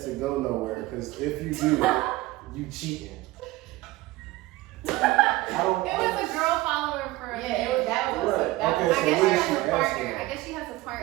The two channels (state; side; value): quieter; left; 18.5 dB